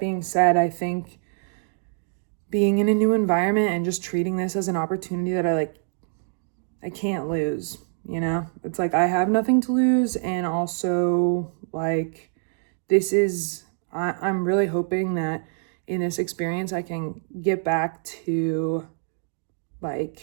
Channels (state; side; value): silent; left; digital silence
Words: said, I think being in a new environment and just treating this as an opportunity that I can't lose, It's like I have nothing to lose, and also like I'm really hoping that in this experience I can get back to